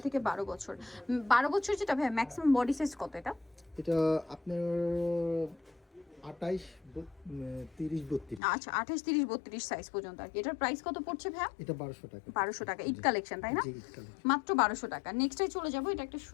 থেকে 12 বছর। 12 বছর যেটা ভাই ম্যাক্সিমাম বডি সাইজ কত এটা? এটা আপনার 28 30 32। আচ্ছা, 28 30 32 সাইজ পর্যন্ত আর কি। এটার প্রাইস কত পড়ছে ভাই? এটা 1200 টাকা। 1200 টাকা ঈদ কালেকশন, তাই না? জি, ঈদ কালেকশন। মাত্র 1200 টাকা। নেক্সটে চলে যাব, এটা একটা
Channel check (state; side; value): drops out; right; at 8.4 s